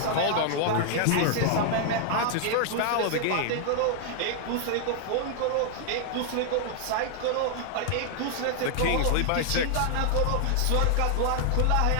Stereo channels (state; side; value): different; both; correlation 0.00